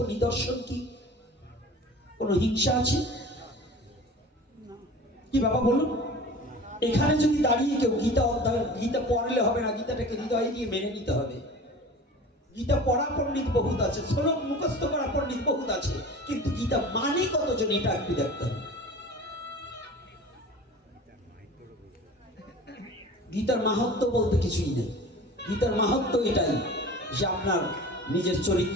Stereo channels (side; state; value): both; normal; correlation 0.39